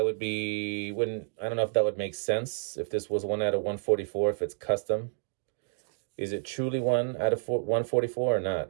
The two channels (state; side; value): silent; left; digital silence